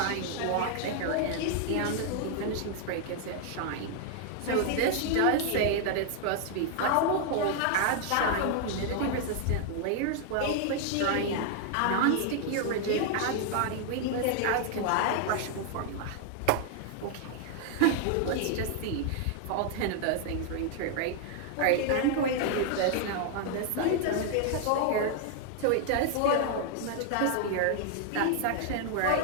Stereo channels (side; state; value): both; different; correlation 0.00